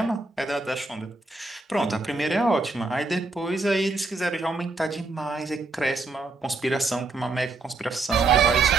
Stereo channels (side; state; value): left; quieter; 3.5 dB